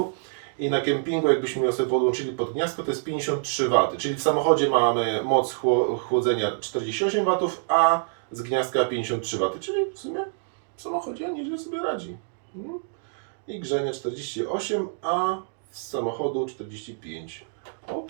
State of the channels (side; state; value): left; silent; digital silence